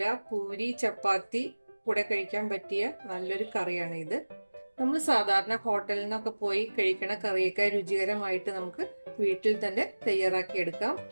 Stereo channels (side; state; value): both; inverted; correlation -1.00